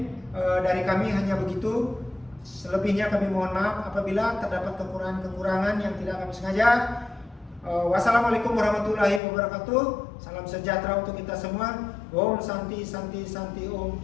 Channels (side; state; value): right; drops out; at 9.2 s